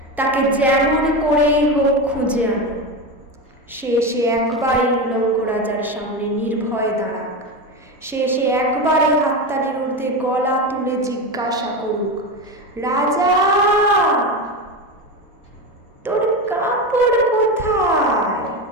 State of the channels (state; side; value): normal; both; correlation 0.19